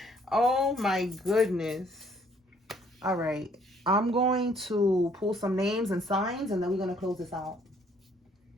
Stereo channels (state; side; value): normal; both; correlation 0.63